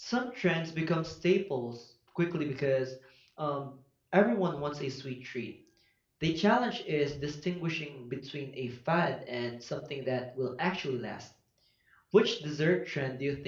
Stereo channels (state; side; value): identical; both; correlation 1.00